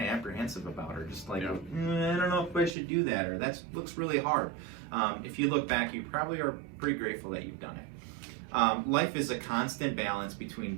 apprehensive about, or just like, I don't know if I should do that, or that looks really hard. If you look back, you probably are pretty grateful that you've done it. Life is a constant balance between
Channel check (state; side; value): drops out; left; at 2.8 s